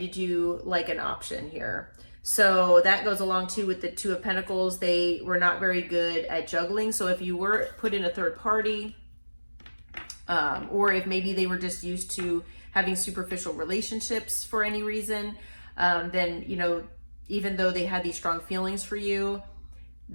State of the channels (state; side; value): inverted; both; correlation -1.00